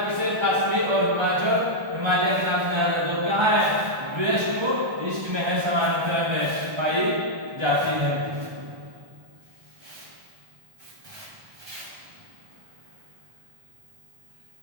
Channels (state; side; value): late; left; 1.3 ms